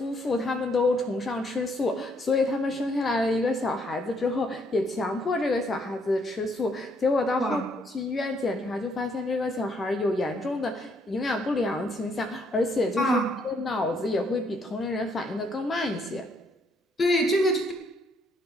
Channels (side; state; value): both; normal; correlation 0.70